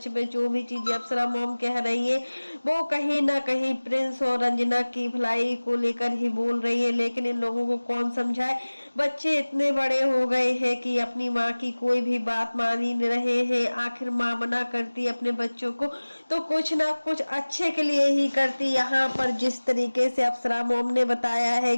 में जो भी चीजें अप्सरा मॉम कह रही है वो कहीं ना कहीं प्रिंस और रंजना की भलाई को लेकर ही बोल रही है, लेकिन इन लोगों को कौन समझाए। बच्चे इतने बड़े हो गए हैं कि अपनी माँ की कोई भी बात मान ही नहीं रहे हैं। आखिर माँ मना करती है अपने बच्चों को तो कुछ ना कुछ अच्छे के लिए ही करती। यहाँ पर जिस तरीके से अप्सरा मॉम ने बताया है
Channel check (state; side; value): inverted; both; correlation -1.00